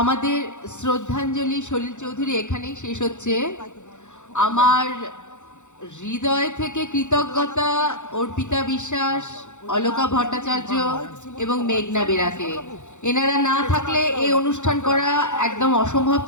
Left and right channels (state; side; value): late; right; 0.84 ms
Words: শ্রদ্ধাঞ্জলি সলিল চৌধুরী এখানেই শেষ হচ্ছে। আমার হৃদয় থেকে কৃতজ্ঞতা অর্পিতা বিশ্বাস, অলকা ভট্টাচার্য এবং মেঘনা বেরাকে। এনারা না থাকলে এই অনুষ্ঠান করা একদম অসম্ভব